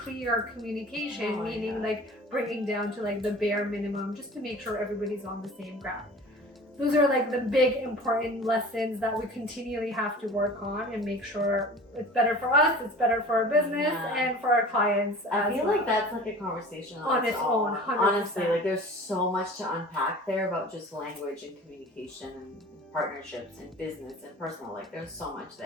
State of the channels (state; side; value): normal; both; correlation 0.41